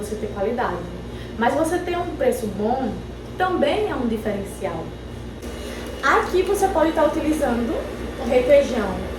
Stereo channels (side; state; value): both; identical; correlation 1.00